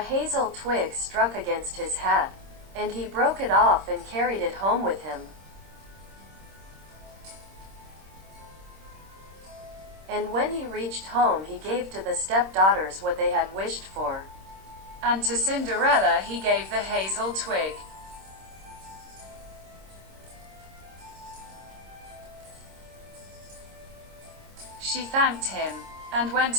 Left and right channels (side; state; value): left; late; 26 ms